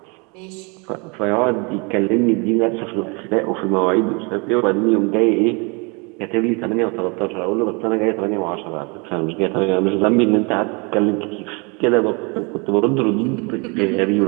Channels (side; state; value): left; quieter; 31.0 dB